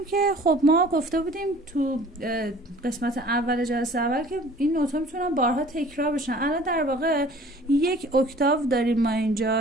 که خب ما گفته بودیم تو قسمت اول جلسه اول که این نوت‌ها میتونن بارها تکرار بشن. الان در واقع یک اکتاو داریم ما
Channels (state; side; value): normal; both; correlation 0.49